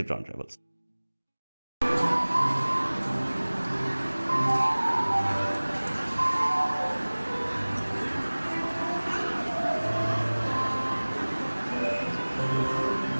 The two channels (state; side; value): inverted; both; correlation -1.00